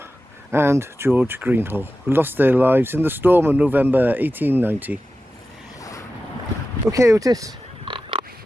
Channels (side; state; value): both; normal; correlation 0.94